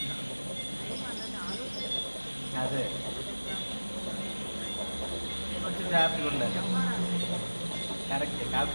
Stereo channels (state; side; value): inverted; both; correlation -1.00